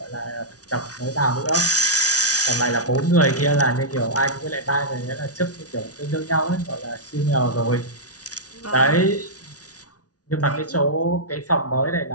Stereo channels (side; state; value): right; late; 0.68 ms